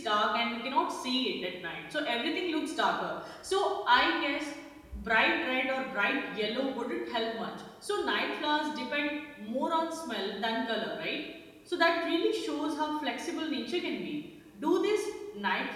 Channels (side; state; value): both; identical; correlation 1.00